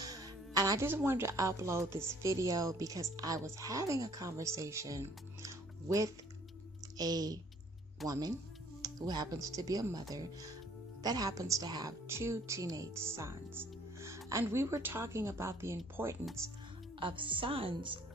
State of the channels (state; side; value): normal; both; correlation 0.58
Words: And I just wanted to upload this video because I was having a conversation with a woman who happens to be a mother that happens to have 2 teenage sons. And we were talking about the importance of sons